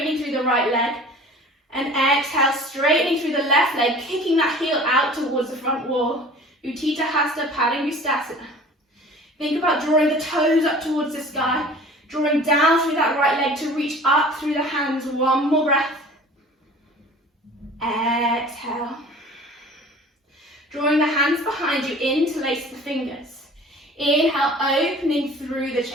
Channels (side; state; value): both; normal; correlation 0.44